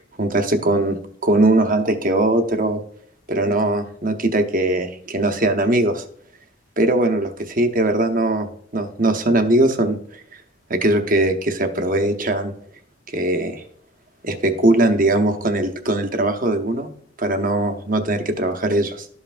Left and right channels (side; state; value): both; normal; correlation 0.42